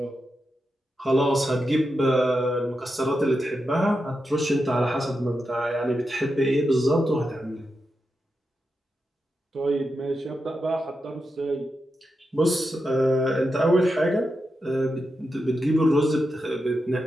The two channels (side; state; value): both; normal; correlation 0.88